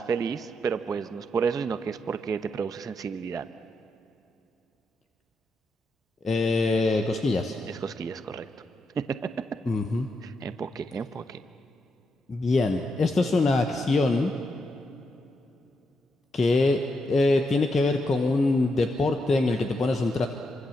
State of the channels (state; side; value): normal; both; correlation 0.83